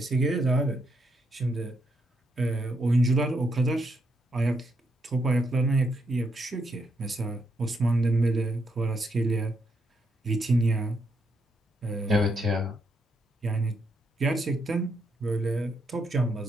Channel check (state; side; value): normal; both; correlation 0.78